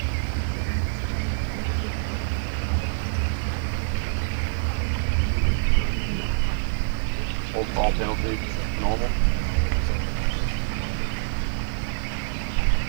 Old ball penalty, normal.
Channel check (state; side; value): silent; left; 61 dB below the other